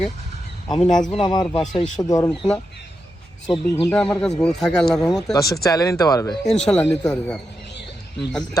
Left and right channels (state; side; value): normal; both; correlation 0.87